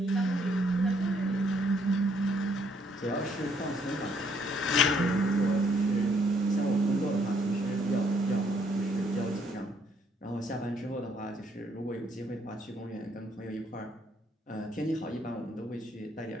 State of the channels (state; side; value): normal; both; correlation 0.68